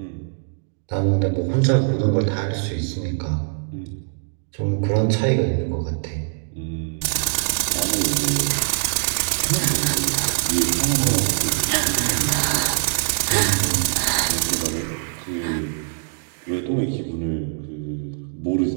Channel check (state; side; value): silent; left; digital silence